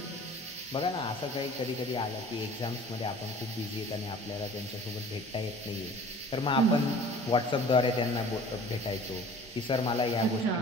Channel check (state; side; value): normal; both; correlation 0.46